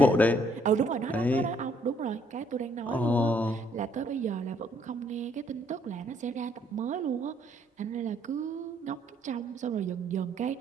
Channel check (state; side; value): normal; both; correlation 0.67